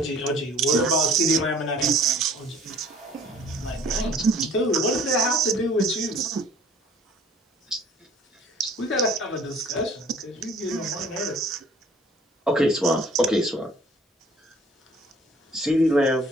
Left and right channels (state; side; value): normal; both; correlation 0.51